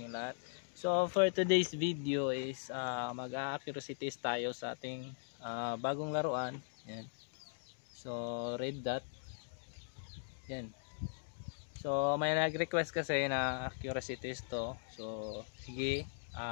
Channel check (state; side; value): silent; right; digital silence